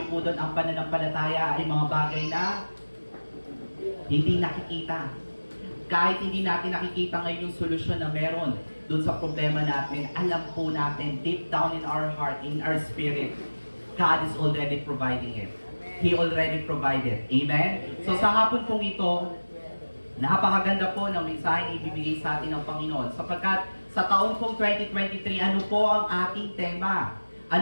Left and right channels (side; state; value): both; inverted; correlation -1.00